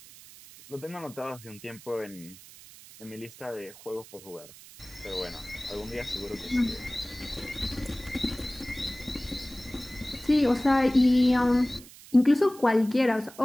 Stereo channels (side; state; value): right; noise; hiss, 19 dB below the sound